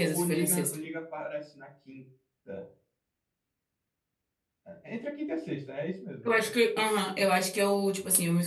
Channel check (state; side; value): identical; both; correlation 1.00